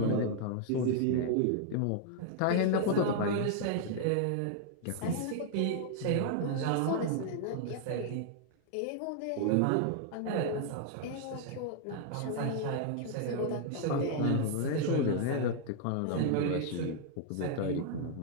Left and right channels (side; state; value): both; different; correlation 0.00